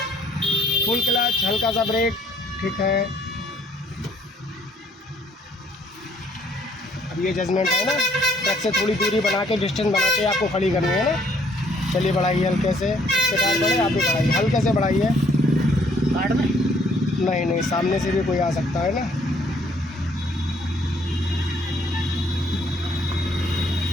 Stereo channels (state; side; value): normal; both; correlation 0.64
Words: फुल क्लच, हल्का सा ब्रेक। ठीक है, अब ये जजमेंट है ना, ट्रक से थोड़ी दूरी बना के, डिस्टेंस बना के आपको खड़ी करनी है ना। चलिए बढ़ाइए हल्के से, इसके टायर बढ़े, आप भी बढ़ाइए, हल्के से बढ़ाइए। कार्ड में नहीं नहीं, सामने से भी कोई आ सकता है ना।